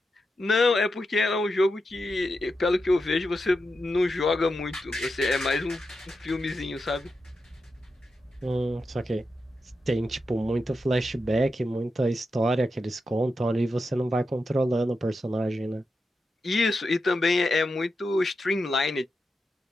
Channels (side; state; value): both; normal; correlation 0.88